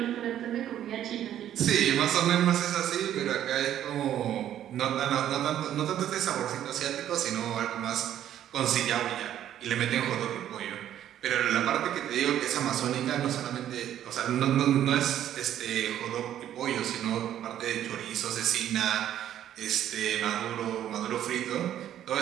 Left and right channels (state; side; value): quieter; left; 11.2 dB